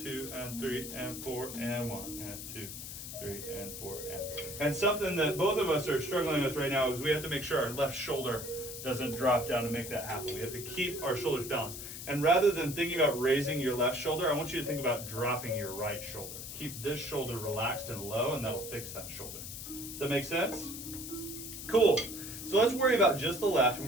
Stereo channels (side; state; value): left; noise; hiss, 9 dB below the sound